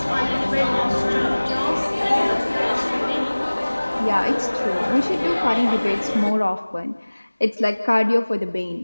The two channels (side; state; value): both; inverted; correlation -1.00